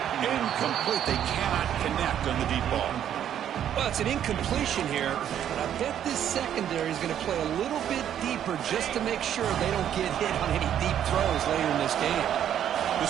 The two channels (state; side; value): quieter; left; 10.1 dB